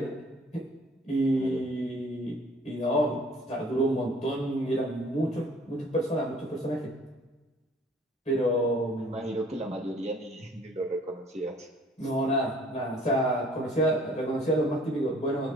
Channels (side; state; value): both; normal; correlation 0.54